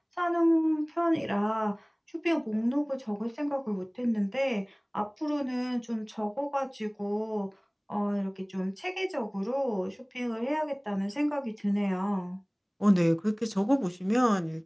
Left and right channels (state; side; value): identical; both; correlation 1.00